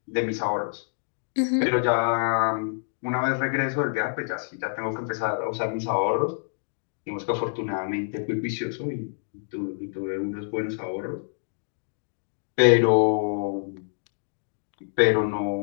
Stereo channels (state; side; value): silent; right; digital silence